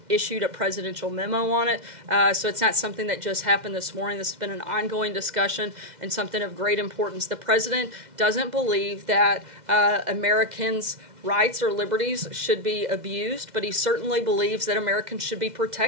issued a presidential memo on it. So it's not something that just happened this morning. This has been an ongoing discussion and something of great importance. The president doesn't believe that Americans' rights or liberties should be abused, but he certainly believes that Americans should be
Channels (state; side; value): late; left; 2.0 ms